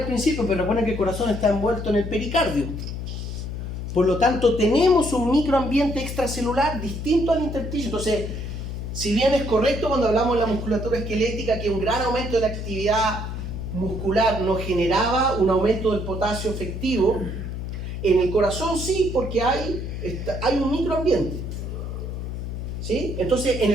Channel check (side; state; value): left; noise; hum, 6 dB below the sound